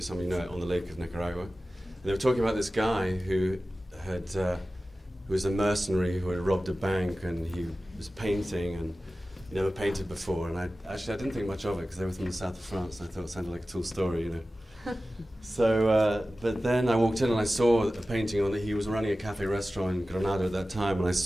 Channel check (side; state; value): both; normal; correlation 0.95